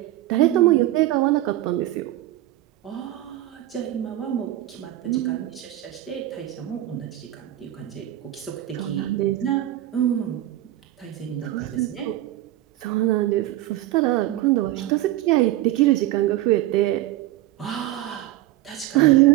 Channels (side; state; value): left; quieter; 15.0 dB